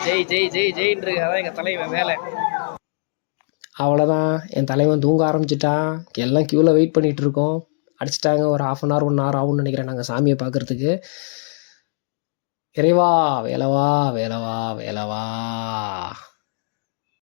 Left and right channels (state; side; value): silent; right; digital silence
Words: ஜெய் ஜெய் ஜெய் ஜெயின்னு. அதான் எங்கள் தலைவன் வேலை. அவ்வளோதான், என் தலைவன் தூங்க ஆரம்பிச்சிட்டான். எல்லாம் க்யூவில் வெயிட் பண்ணிகிட்டு இருக்கோம். அடிச்சிட்டாங்க. ஒரு 1/2 hour 1 hour ஆகும்னு நினைக்கிறேன் நாங்கள் சாமியை பார்க்குறதுக்கு. இறைவா வேலவா வேலவா வேலவா.